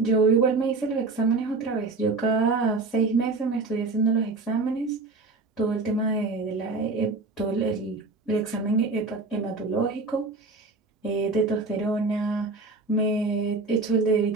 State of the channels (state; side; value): quieter; left; 3.7 dB